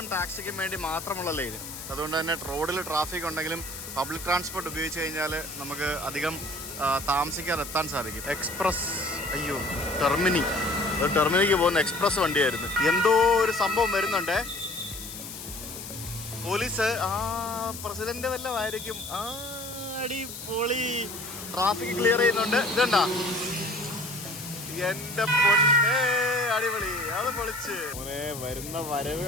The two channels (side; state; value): left; noise; hiss, 10 dB below the sound